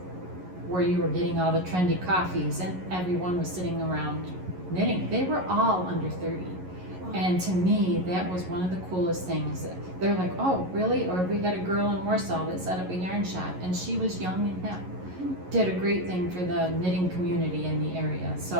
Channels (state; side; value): late; left; 11 ms